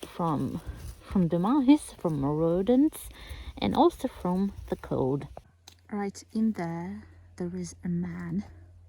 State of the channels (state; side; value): identical; both; correlation 1.00